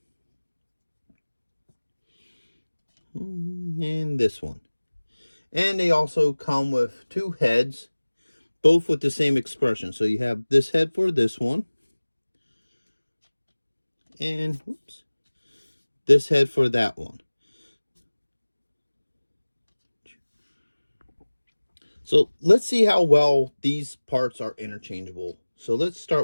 And this one. And they also come with 2 heads, both with the same expression. So you have this head for this one. And whoops, this head for that one. So let's see how well these parts are interchangeable. So let's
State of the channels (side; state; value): both; inverted; correlation -1.00